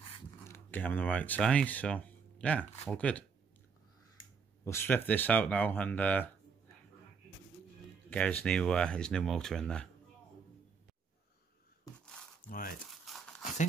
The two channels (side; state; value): left; quieter; 5.6 dB